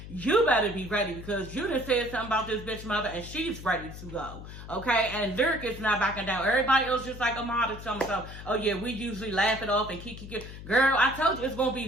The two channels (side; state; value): left; noise; hum, 12 dB below the sound